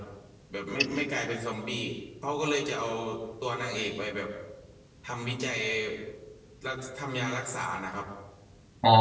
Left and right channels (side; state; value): both; identical; correlation 1.00